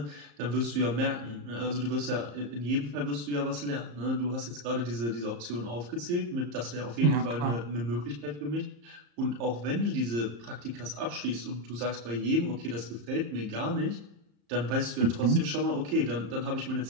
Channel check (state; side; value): late; left; 34 ms